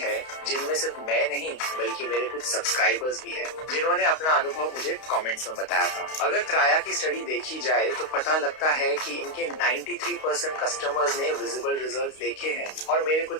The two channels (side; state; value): right; late; 32 ms